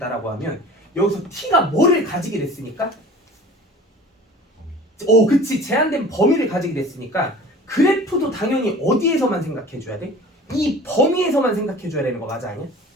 하면 여기서 t가 뭐를 가지게 됐으니까? 그치. 제한된 범위를 가지게 됐으니까 그래프도 당연히 어디에서만 생각해 줘야 돼? 이 범위에서만 생각해 줘야 되는 거 맞아 아니야?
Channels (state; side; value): normal; both; correlation 0.43